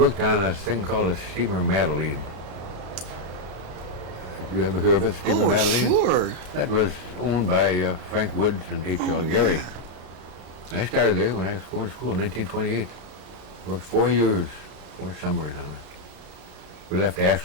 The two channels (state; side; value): late; left; 33 ms